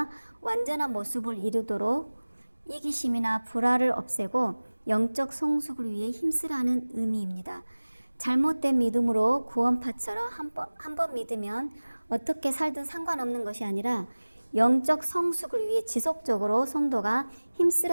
완전한 모습을 이루도록 이기심이나 불화를 없애고 영적 성숙을 위해 힘쓰라는 의미입니다. 잘못된 믿음으로 구원파처럼 한 번 믿으면 어떻게 살든 상관없는 것이 아니라 영적 성숙을 위해 지속적으로 성도가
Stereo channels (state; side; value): inverted; both; correlation -1.00